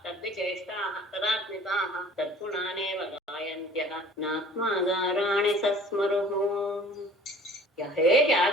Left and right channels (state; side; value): normal; both; correlation 0.49